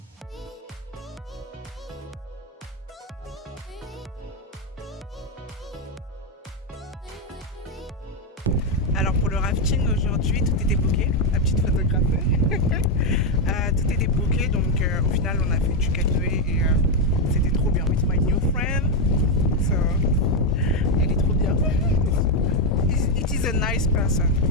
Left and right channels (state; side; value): normal; both; correlation 0.04